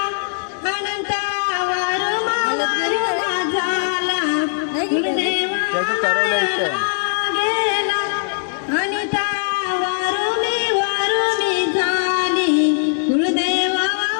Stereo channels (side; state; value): right; silent; 66 dB below the other